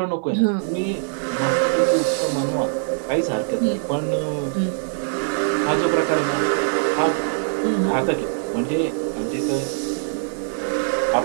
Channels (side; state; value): left; silent; digital silence